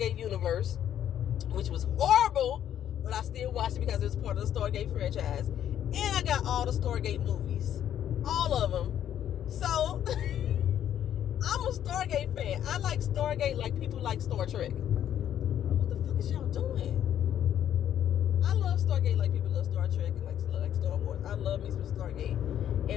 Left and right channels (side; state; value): right; quieter; 10.4 dB